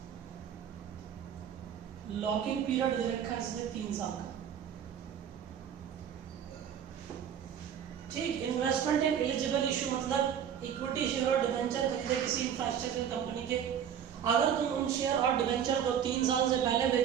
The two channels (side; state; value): left; quieter; 8.8 dB